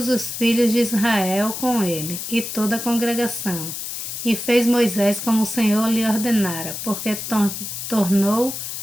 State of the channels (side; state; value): left; noise; hiss, 6 dB below the sound